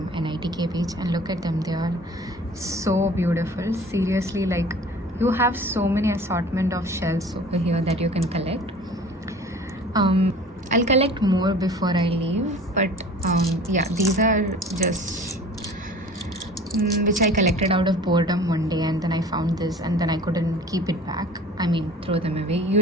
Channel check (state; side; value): normal; both; correlation 0.45